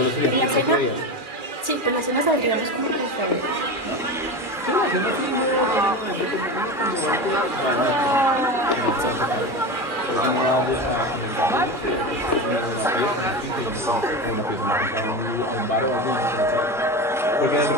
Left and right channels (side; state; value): both; normal; correlation 0.24